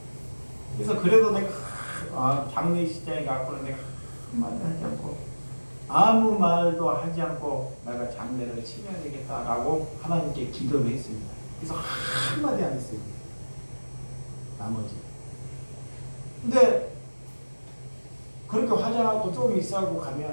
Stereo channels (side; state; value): both; inverted; correlation -1.00